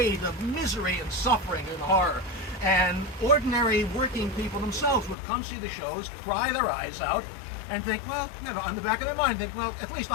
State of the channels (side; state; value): right; drops out; at 5.2 s